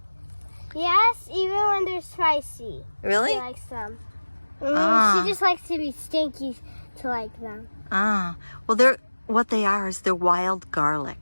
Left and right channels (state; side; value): inverted; both; correlation -1.00